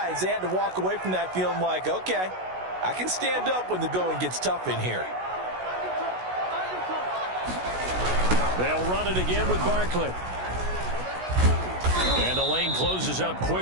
they had to walk away from that feeling like, okay, I can stand up when the going gets tough in here. They'll run it again with Barkley. And the lane closes up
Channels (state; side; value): late; left; 16 ms